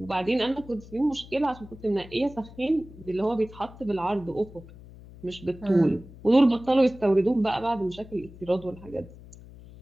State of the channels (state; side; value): noise; left; hum, 19 dB below the sound